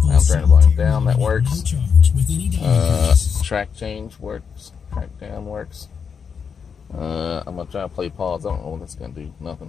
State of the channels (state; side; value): quieter; right; 6.4 dB